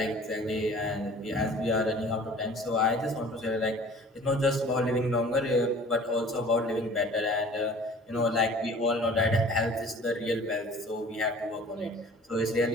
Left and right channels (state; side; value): normal; both; correlation 0.47